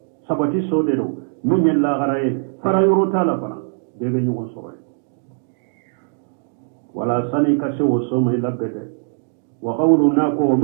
sabati so de do minye la garaye fara yoro tala bana bebe nyugo soye wala sani ka se wo somi labede وقولنا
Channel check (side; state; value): left; silent; digital silence